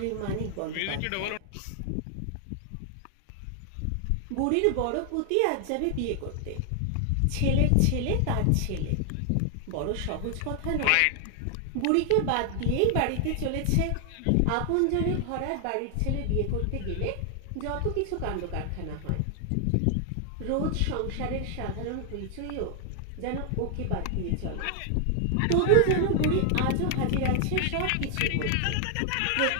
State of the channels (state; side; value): different; both; correlation 0.00